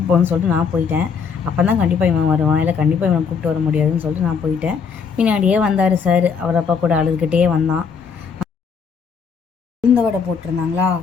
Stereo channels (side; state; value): right; quieter; 6.0 dB